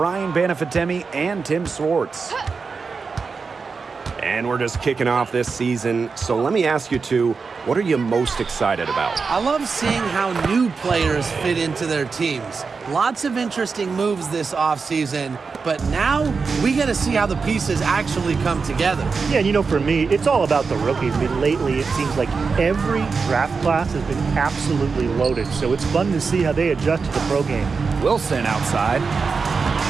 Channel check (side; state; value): left; quieter; 4.9 dB